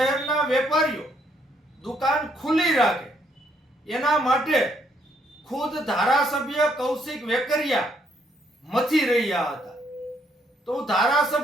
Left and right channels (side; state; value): both; normal; correlation 0.71